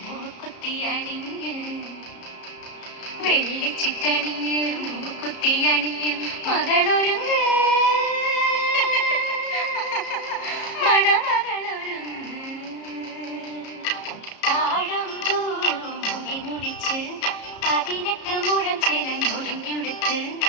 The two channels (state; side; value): late; right; 33 ms